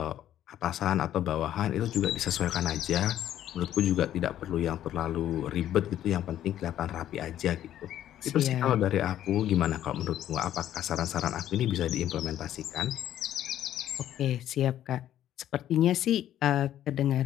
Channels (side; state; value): right; quieter; 11.8 dB